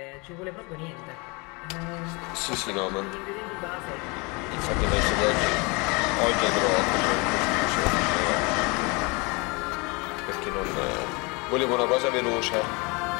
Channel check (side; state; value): right; quieter; 28.4 dB